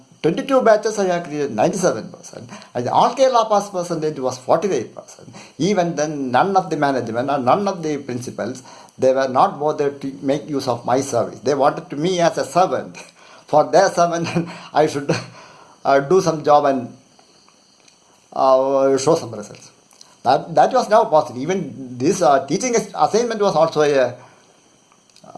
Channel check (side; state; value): both; identical; correlation 1.00